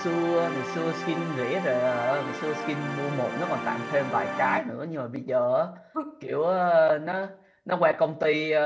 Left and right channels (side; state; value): both; identical; correlation 1.00